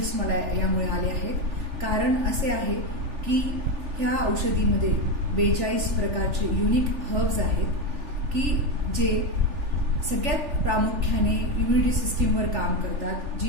मला यामुळे आले आहेत। कारण असे आहे की ह्या औषधीमध्ये 42 प्रकारचे युनिक हर्ब्स आहेत की जे सगळ्यात प्रामुख्याने इम्युनिटी सिस्टीमवर काम करतात।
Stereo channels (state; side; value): late; left; 3.4 ms